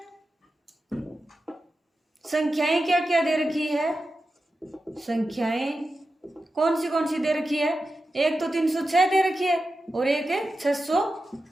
संख्याएं क्या क्या दे रखी है, संख्याएं कौन सी दे रखी है, एक तो 306 दे रखी है और एक है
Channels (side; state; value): both; normal; correlation 0.91